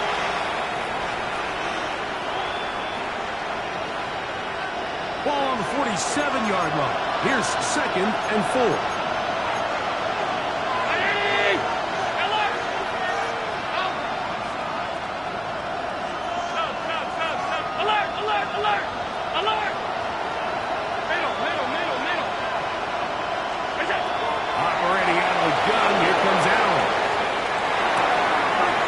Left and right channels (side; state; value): both; identical; correlation 1.00